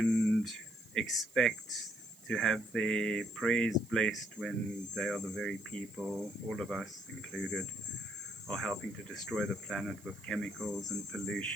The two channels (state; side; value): noise; right; hiss, 24 dB below the sound